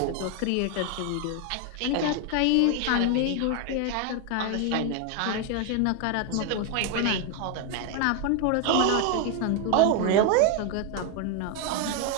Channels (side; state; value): both; different; correlation 0.01